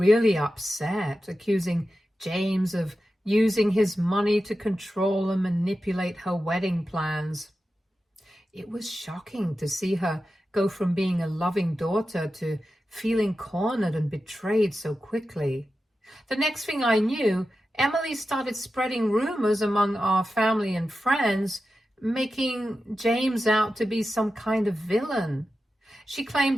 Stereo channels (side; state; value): both; normal; correlation 0.92